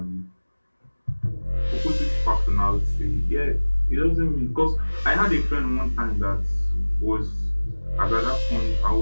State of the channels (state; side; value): inverted; both; correlation -1.00